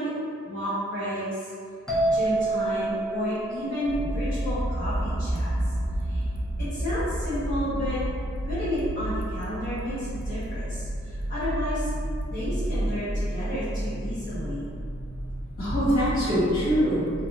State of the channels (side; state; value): both; normal; correlation 0.69